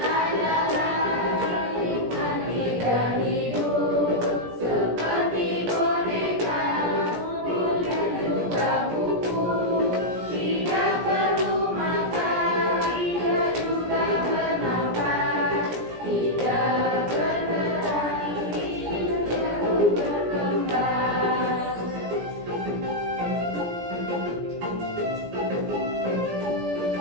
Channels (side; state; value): left; late; 17 ms